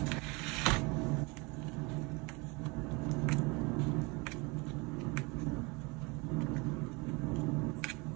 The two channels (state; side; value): quieter; left; 27.6 dB